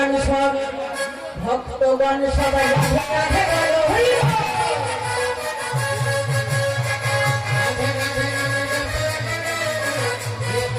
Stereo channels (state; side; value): identical; both; correlation 1.00